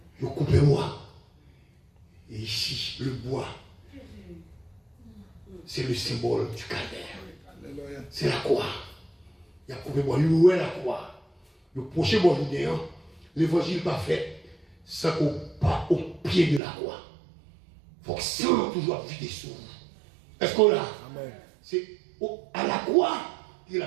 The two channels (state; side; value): drops out; left; at 16.6 s